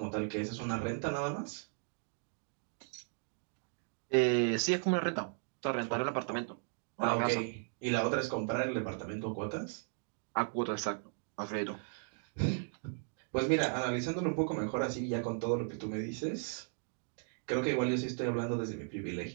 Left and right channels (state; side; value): silent; left; 54 dB below the other